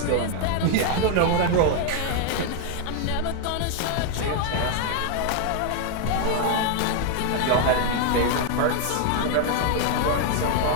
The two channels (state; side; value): different; both; correlation 0.00